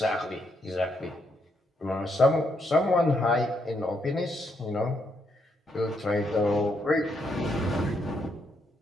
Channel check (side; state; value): both; normal; correlation 0.77